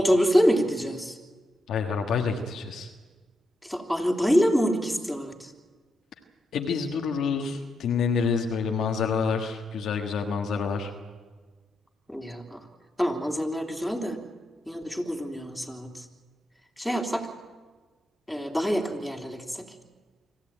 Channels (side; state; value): both; normal; correlation 0.84